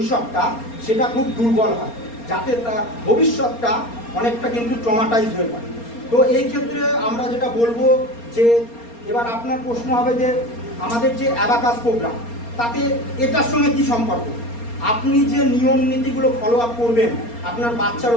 সেটা খুব দুর্বল হয়, যাতে তার ভবিষ্যৎটা অনেকটা কিন্তু ট্রমাটাইজ হয়ে পড়ে। তো এই ক্ষেত্রে আমরা যেটা বলবো যে, এবার আপনার প্রশ্ন হবে যে আমাদের যে অ্যাবাকাস প্রোগ্রাম, তাতে এটার সঙ্গে কি সম্পর্ক? আপনি যে নিয়ম নীতিগুলো ফলো আপ করবেন আপনার বাচ্চার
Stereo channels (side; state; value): right; late; 4.3 ms